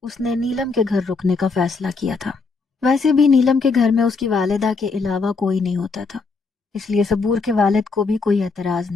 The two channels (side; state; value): right; quieter; 4.3 dB